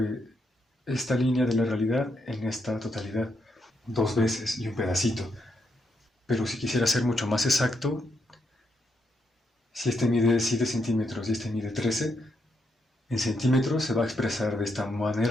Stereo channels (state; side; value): normal; both; correlation 0.79